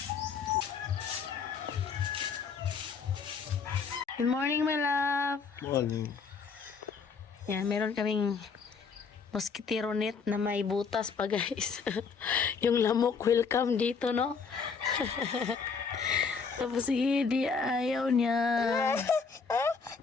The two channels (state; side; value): quieter; right; 5.5 dB